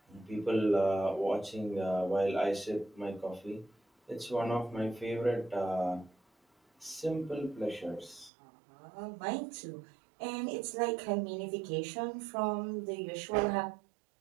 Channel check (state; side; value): drops out; left; at 8.3 s